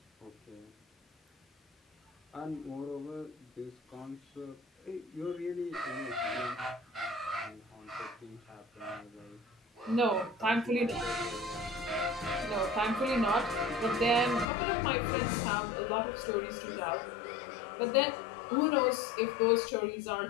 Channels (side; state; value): right; drops out; at 14.5 s